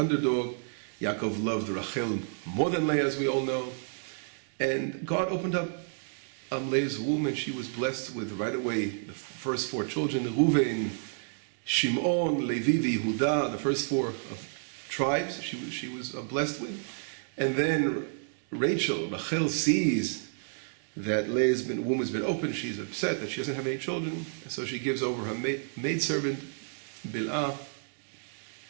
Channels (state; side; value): silent; left; digital silence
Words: Yaakov loved Rachel more than Leah, as we all know. And God opened up Leah's womb, and she was blessed with right away the first four children, Reuven, Shimon, Levi, Yehuda, the first four tribes she was blessed with. And then Rachel sees that Leah's womb has been opened. She's upset that she doesn't have any children, and so she gives over her maidservant, Bilhah,